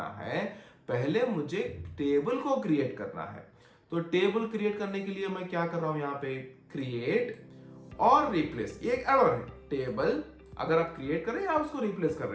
है, पहले मुझे टेबल को क्रिएट करना है। तो टेबल क्रिएट करने के लिए मैं क्या कर रहा हूं, यहाँ पे क्रिएट और रिप्लेस, ये एक एरर है। टेबल अगर आप क्रिएट कर रहे हैं या उसको रिप्लेस कर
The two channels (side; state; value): both; identical; correlation 1.00